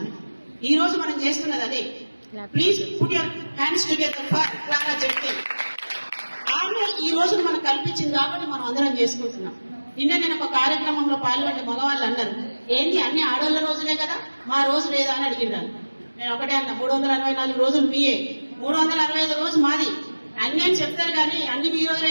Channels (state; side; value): inverted; both; correlation -1.00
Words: ఈ రోజు మనం చేస్తున్నది అదే. Please put your hands together for Clara Zetkin. ఆమె ఈ రోజు మనకు కల్పించింది కాబట్టి మనం అందరం చేసుకుంటున్నాం. నిన్న నేను ఒక కార్యక్రమంలో పాల్గొంటే మగవాళ్ళు అన్నారు, ఏంటి అన్ని ఆడోళ్ల రోజులే కదా, మా రోజు లేదా అని అడిగినాను. నేను ఒకటే అన్నా, 364 రోజులు మీయే, 365 రోజు మాది. అన్ని అని చెప్తారు కానీ అన్ని మీ రోజులే